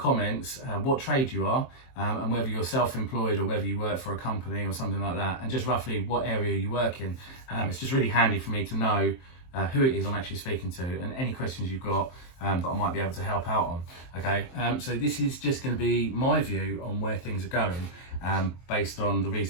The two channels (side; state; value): right; late; 23 ms